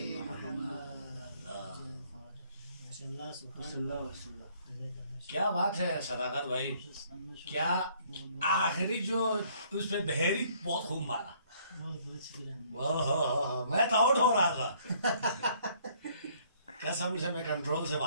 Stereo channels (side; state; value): both; inverted; correlation -0.63